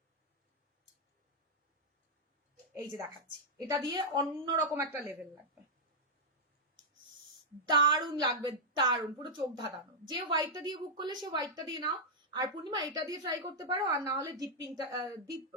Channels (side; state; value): both; normal; correlation -0.06